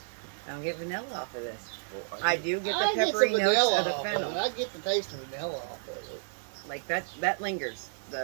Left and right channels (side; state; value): left; silent; 57 dB below the other